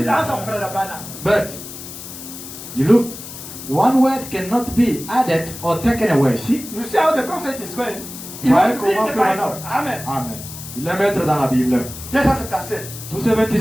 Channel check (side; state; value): left; noise; hiss, 12 dB below the sound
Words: ça, frère Branham. but you look, one word cannot be added or taken away. See, You see how the prophet is going? He Ouais, will be in comment the faire Bible. maintenant? Amen. Amen. Il est maître dans la Bible. 277.